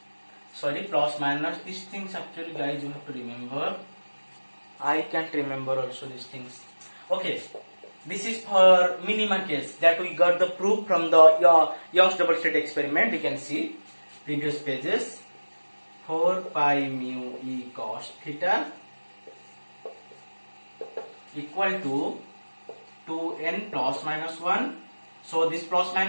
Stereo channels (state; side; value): inverted; both; correlation -1.00